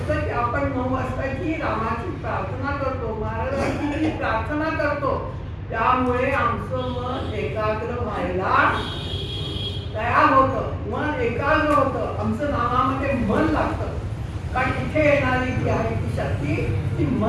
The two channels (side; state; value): both; identical; correlation 1.00